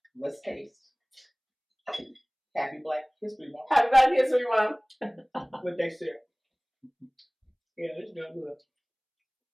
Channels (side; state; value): both; identical; correlation 1.00